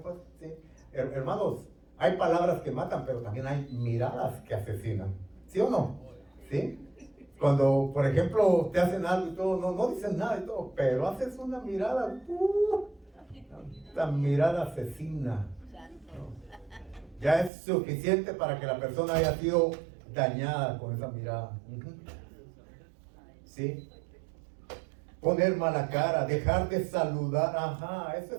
cuenta? ¿Sí? Hermanos, hay palabras que matan, pero también hay miradas que asesinan. ¿Sí o no? ¿Sí? Cuando, por ejemplo, te hacen algo y todo, no dicen nada y todo, pero haces una mirada, la mirada asesina. Ya es suficiente para que la persona haya sido dañada con esa mirada. ¿Sí? Poner mala cara, dejar de saludar. Ajá, esa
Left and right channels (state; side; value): drops out; left; at 17.5 s